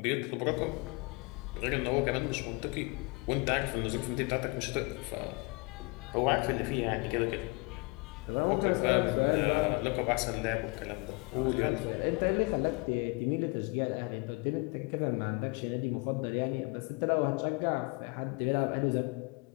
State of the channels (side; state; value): right; quieter; 28.3 dB